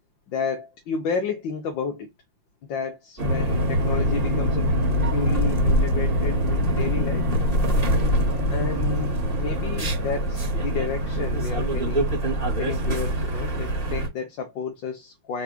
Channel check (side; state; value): right; late; 5.7 ms